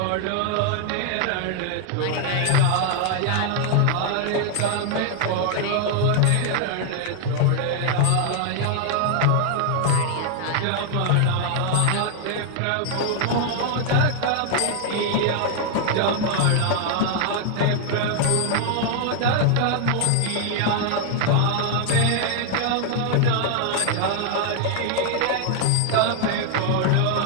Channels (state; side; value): different; both; correlation 0.00